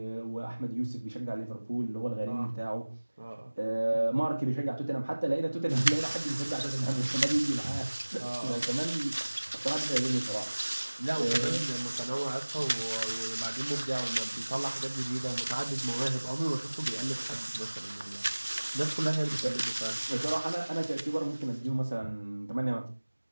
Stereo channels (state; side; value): inverted; both; correlation -1.00